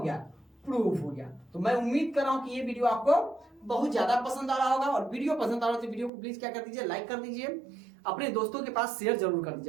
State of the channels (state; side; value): drops out; left; at 6.1 s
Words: गया, प्रूफ हो गया। तो मैं उम्मीद कर रहा हूं कि ये वीडियो आपको बहुत ज्यादा पसंद आ रहा होगा, और वीडियो पसंद आ रहा है तो वीडियो को प्लीज क्या कर दीजिए, लाइक कर दीजिए। अपने दोस्तों के पास शेयर जरूर कर